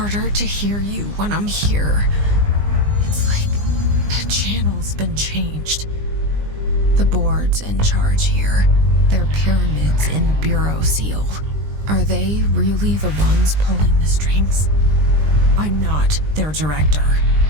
to hear you when I'm here. It's like the channel's been changed. The board's in charge here. They're pyramids in the Bureau seal. Are they really the ones pulling the strings? I'm not their director.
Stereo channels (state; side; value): late; left; 20 ms